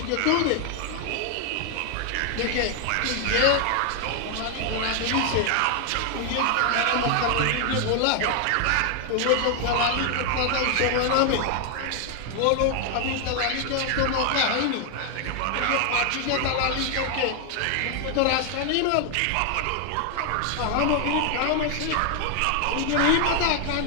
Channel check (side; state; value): both; different; correlation 0.00